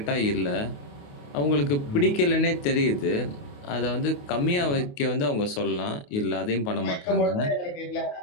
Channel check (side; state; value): right; late; 28 ms